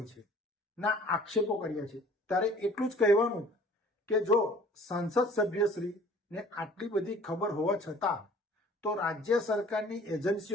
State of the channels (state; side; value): normal; both; correlation 0.50